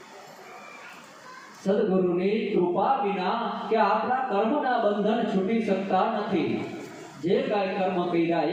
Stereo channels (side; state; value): both; identical; correlation 1.00